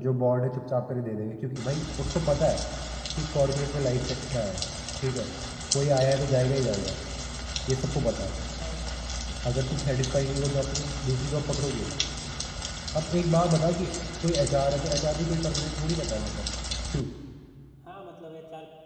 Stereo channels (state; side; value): identical; both; correlation 1.00